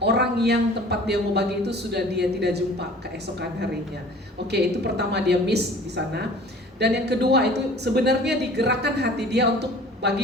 orang yang tempat dia mau bagi itu sudah dia tidak jumpa keesokan harinya. Oke, itu pertama dia miss di sana. Dan yang kedua itu sebenarnya digerakkan hati dia untuk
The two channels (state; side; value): normal; both; correlation 0.46